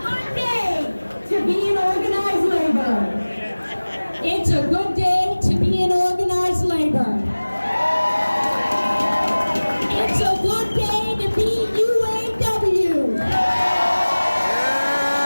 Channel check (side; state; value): both; inverted; correlation -1.00